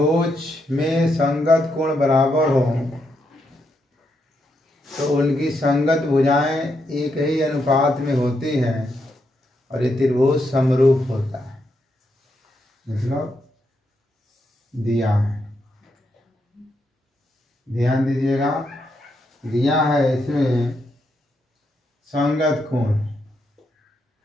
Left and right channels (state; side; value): normal; both; correlation 0.80